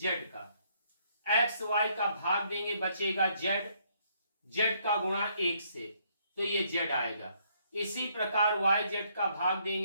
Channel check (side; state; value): both; inverted; correlation -0.69